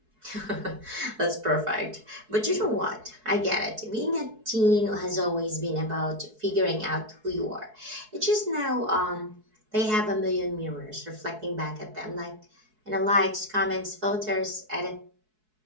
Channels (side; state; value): left; late; 4.7 ms